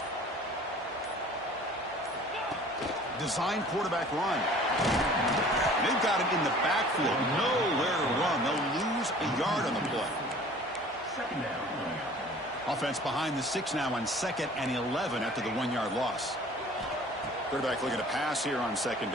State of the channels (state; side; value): normal; both; correlation 0.48